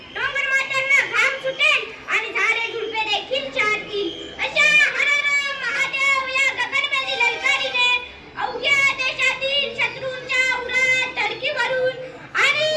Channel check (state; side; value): identical; both; correlation 1.00